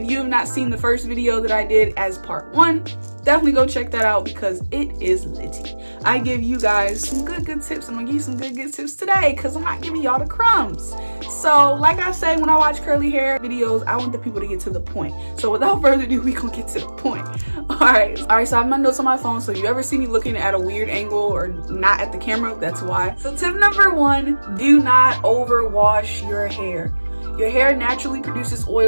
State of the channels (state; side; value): inverted; both; correlation -1.00